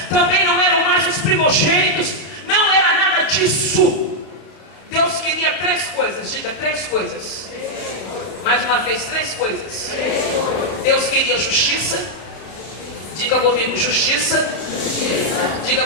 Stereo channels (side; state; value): right; late; 32 ms